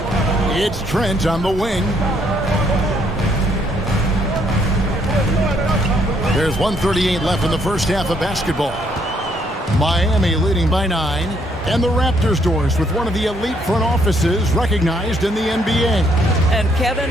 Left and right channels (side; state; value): both; normal; correlation 0.70